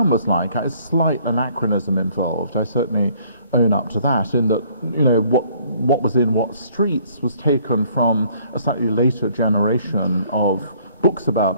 was like has slight anachronism involved. I certainly own up to that, in that what was in what streets was taken from a slightly later generation of books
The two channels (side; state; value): both; inverted; correlation -0.60